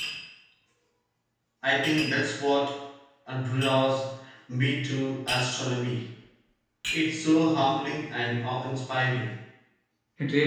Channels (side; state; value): both; identical; correlation 1.00